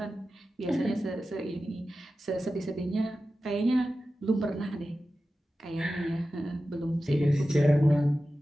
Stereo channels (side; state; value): both; normal; correlation 0.94